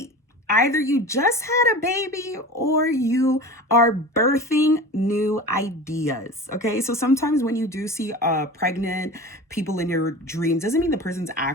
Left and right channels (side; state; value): both; normal; correlation 0.34